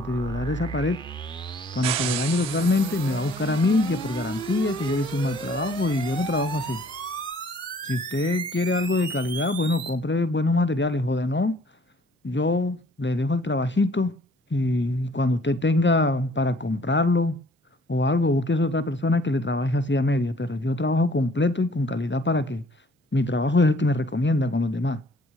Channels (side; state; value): both; normal; correlation 0.57